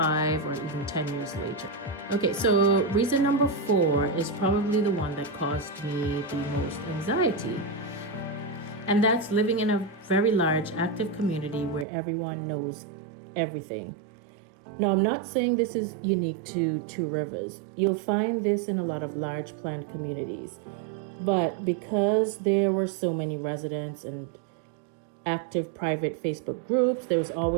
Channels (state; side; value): drops out; left; at 11.9 s